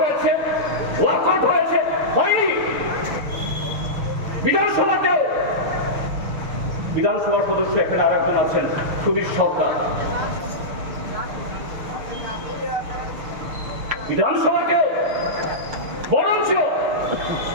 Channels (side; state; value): left; late; 6.5 ms